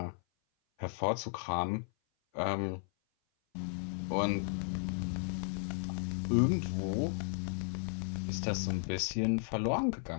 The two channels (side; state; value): right; silent; 55 dB below the other